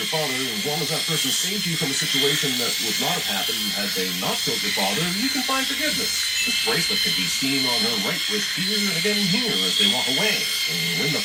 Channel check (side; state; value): both; identical; correlation 1.00